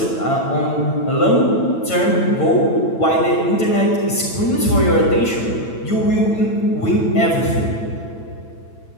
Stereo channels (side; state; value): right; late; 8.9 ms